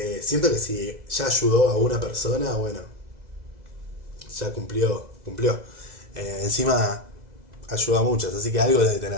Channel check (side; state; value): left; late; 2.0 ms